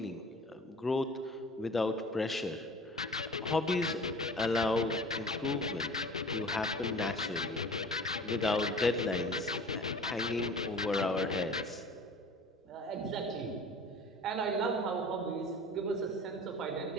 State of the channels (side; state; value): both; normal; correlation 0.43